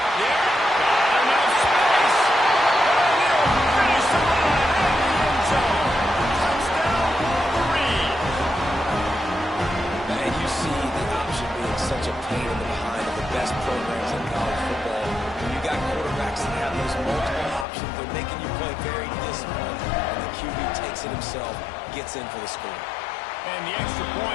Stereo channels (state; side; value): drops out; right; at 17.7 s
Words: Yeah, got enough space. And he'll finish the line at the end zone. Touchdown, Wolverine. And you see the option being such a pain in the behind of the best programs in college football. When you got quarterbacks that have those multiple options, they're making you play very disciplined, and the QB takes it himself, gets in for the score. And the extra